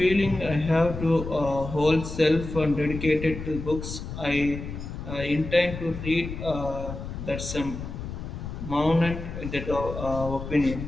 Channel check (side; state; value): left; noise; rumble, 8 dB below the sound